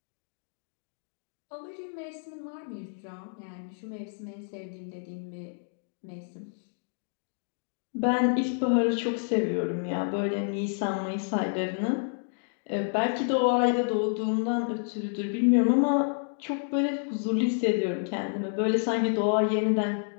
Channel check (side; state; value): right; silent; digital silence